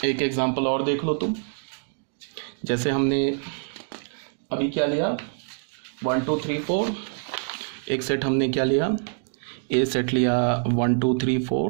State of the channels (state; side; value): silent; left; 61 dB below the other